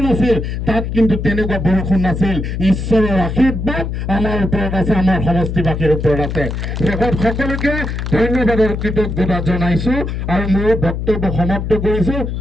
আছিল তাত কিন্তু তেনেকুৱা বৰষুণ নাছিল। ঈশ্বৰৰ আশীৰ্বাদ আমাৰ ওপৰত আছে, আমাৰ সমষ্টিবাসীৰ ওপৰত আছে। শেষত সকলোকে ধন্যবাদৰ কৃতজ্ঞতা জনাইছোঁ আৰু মোৰ বক্তব্য সমাপ্ত কৰিছোঁ।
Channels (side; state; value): left; noise; hum, 4 dB below the sound